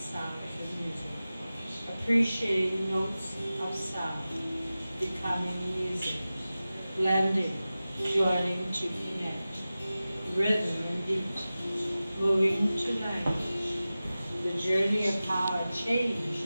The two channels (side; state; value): both; inverted; correlation -0.95